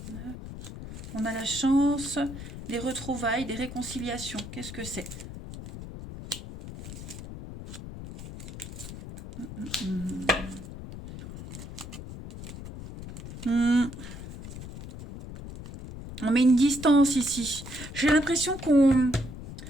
On a la chance, des retrouvailles, des réconciliations. Qu'est-ce que c'est? On met une distance ici. J'ai l'impression qu'on...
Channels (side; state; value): left; noise; rumble, 11 dB below the sound